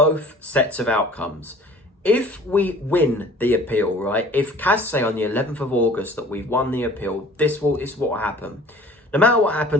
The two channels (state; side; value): normal; both; correlation 0.49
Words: sets of outcomes. If we win the appeal, right, if CAS say on the 11th of August that we've won the appeal, this is what will happen. No matter what